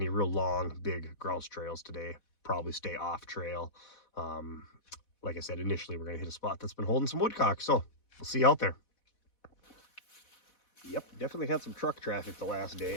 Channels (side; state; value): right; late; 4.1 ms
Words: real long big grouse trails today. Probably stay off trail. Like I said, initially we're gonna hit a spot that's been holding some woodcock, so we'll see you out there. Yep, definitely had some truck traffic the last